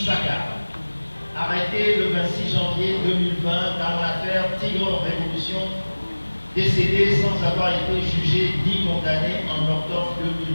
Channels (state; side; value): inverted; both; correlation -1.00